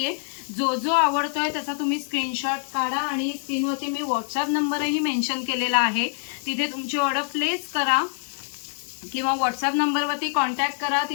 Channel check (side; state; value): right; silent; digital silence